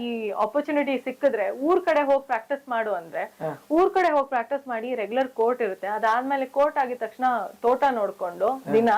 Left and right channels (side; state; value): both; identical; correlation 1.00